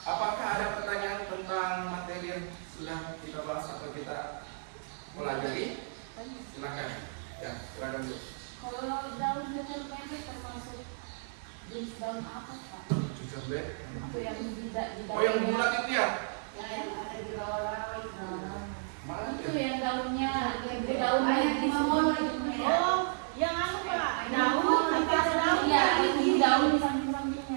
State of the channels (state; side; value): silent; left; digital silence